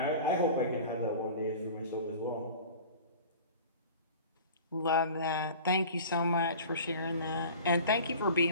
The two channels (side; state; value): both; inverted; correlation -0.40